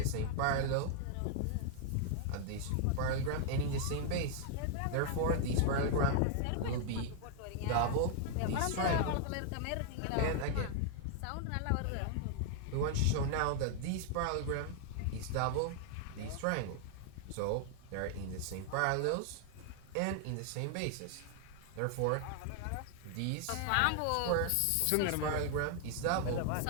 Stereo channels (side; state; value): both; different; correlation 0.00